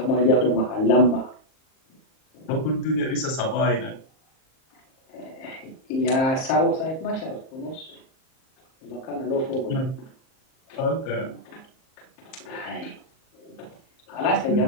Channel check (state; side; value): late; right; 38 ms